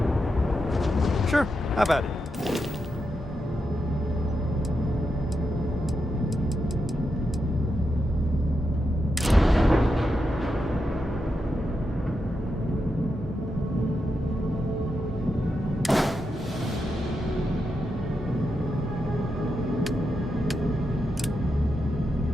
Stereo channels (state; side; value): normal; both; correlation 0.86